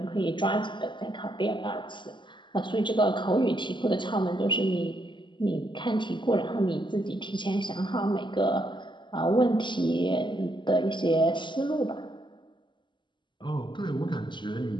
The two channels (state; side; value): late; right; 0.23 ms